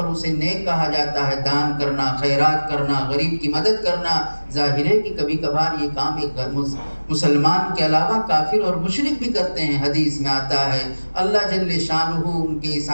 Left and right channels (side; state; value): both; inverted; correlation -1.00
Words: اسے نیک کہا جاتا ہے، دان کرنا، خیرات کرنا، غریب کی مدد کرنا۔ ظاہر ہے کہ کبھی کبھار یہ کام ایک مسلمان کے علاوہ کافر اور مشرک بھی کرتے ہیں، حدیث میں آتا ہے اللہ جل شانہ ان کے اس